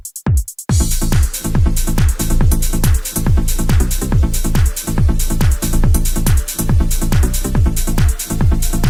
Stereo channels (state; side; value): identical; both; correlation 1.00